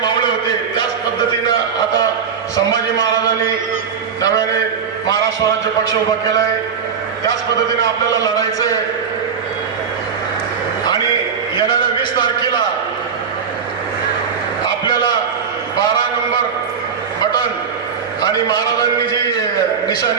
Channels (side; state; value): left; quieter; 6.6 dB